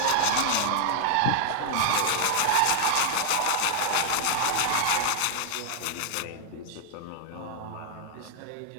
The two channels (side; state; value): both; different; correlation 0.00